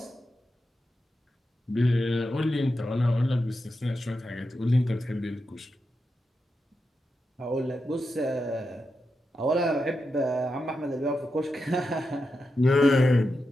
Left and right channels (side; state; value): both; normal; correlation 0.88